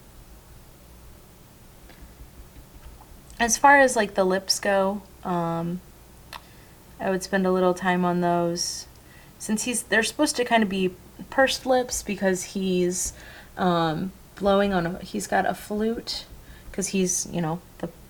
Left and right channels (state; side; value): identical; both; correlation 1.00